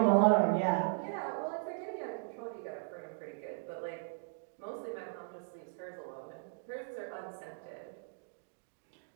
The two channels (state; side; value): silent; left; digital silence